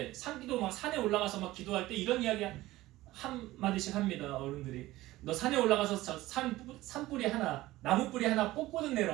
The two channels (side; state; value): left; quieter; 17.3 dB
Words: 산기도 막 산에 올라가서 막 기도할 때 이런 이야기 한 마디씩 합니다. 어른들이 너 산에 올라가서 산뿌리 하나 나무뿌리 하나 뽑고는